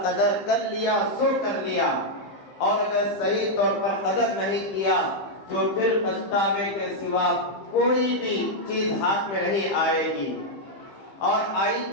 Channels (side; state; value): right; late; 15 ms